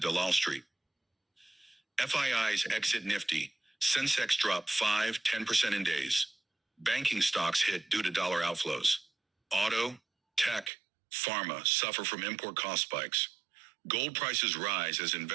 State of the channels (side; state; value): left; drops out; at 10.7 s